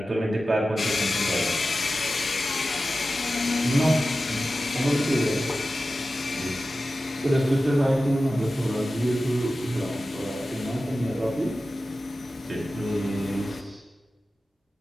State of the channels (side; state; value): both; normal; correlation 0.94